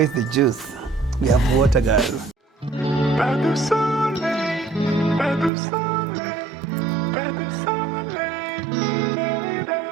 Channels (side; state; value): left; drops out; at 5.5 s